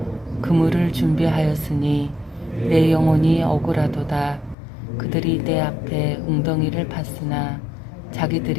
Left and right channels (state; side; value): drops out; right; at 4.5 s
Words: 그물을 준비하였으니 내 영혼이 억울하도다. 그들이 내 앞에 웅덩이를 팠으나